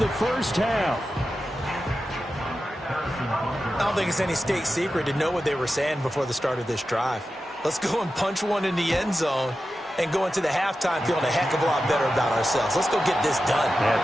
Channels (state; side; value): normal; both; correlation 0.92